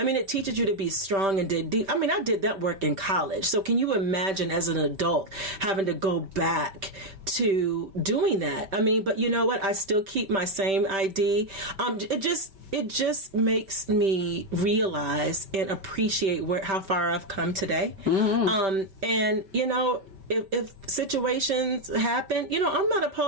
teaches you to be strong and dig deep. I mean, I did that work in college. So can you imagine as an adult having to go back to doing that. I mean, but you know what? I still keep my same ID. It just makes me realize and appreciate how far I've come today. And you know, if situations happen, you know, I'm not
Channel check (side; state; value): left; late; 5.2 ms